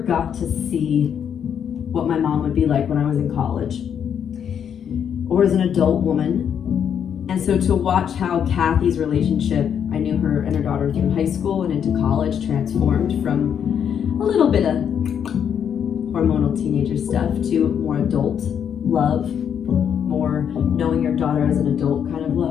to see what my mom would be like when I was in college or as an adult woman. And so to watch how Kathy's relationship, I knew her and her daughter through high school and into college, transformed from a little bit of hormonal teenager stuff to more adult love, more knowing your daughter as an adult kind of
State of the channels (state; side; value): quieter; right; 8.3 dB